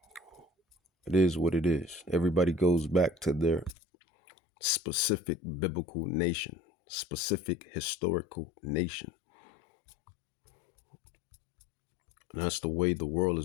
It is what it is. Everybody goes back to their specific biblical nation, specific historical nation. And that's the way the world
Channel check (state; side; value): drops out; right; at 3.8 s